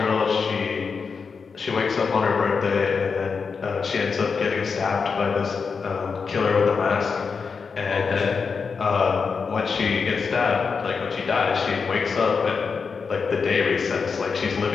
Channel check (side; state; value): right; quieter; 5.3 dB